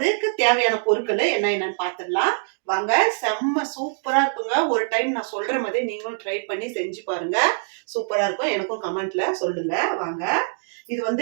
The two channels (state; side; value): silent; left; digital silence